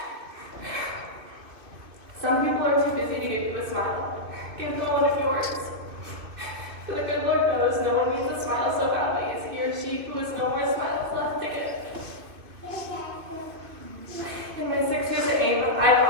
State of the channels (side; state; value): left; late; 2.6 ms